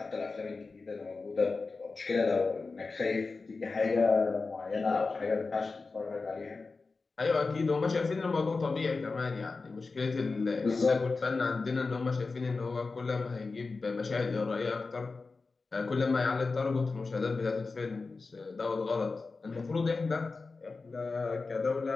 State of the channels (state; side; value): quieter; right; 4.0 dB